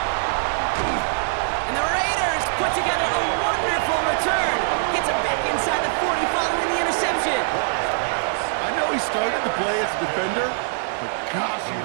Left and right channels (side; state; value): left; silent; digital silence